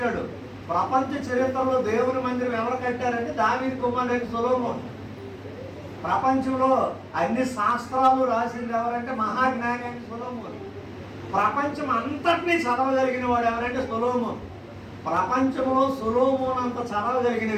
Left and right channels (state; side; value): identical; both; correlation 1.00